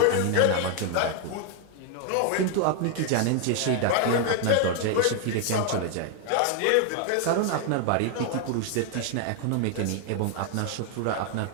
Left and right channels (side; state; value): both; different; correlation 0.00